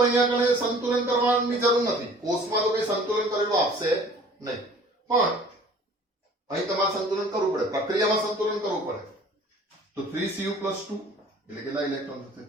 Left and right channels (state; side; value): normal; both; correlation 0.49